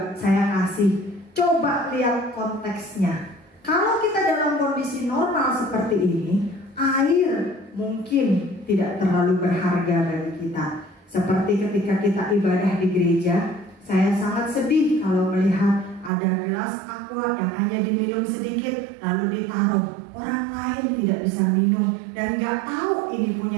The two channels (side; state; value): left; drops out; at 16.1 s